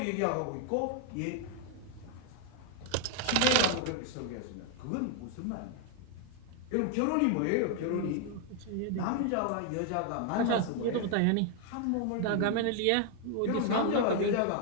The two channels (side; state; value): both; different; correlation 0.00